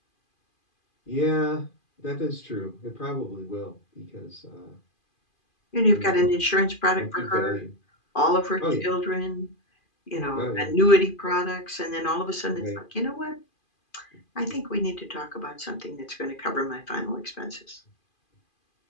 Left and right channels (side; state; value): right; late; 2.4 ms